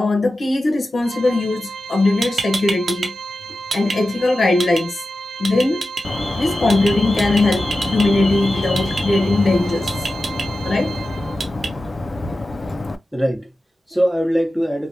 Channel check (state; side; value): normal; both; correlation 0.93